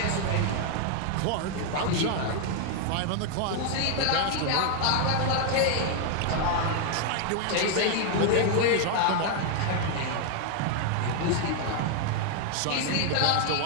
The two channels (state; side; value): different; both; correlation 0.00